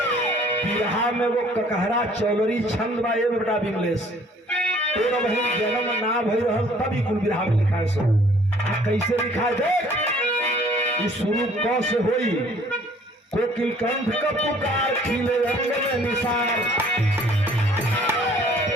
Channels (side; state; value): both; normal; correlation 0.57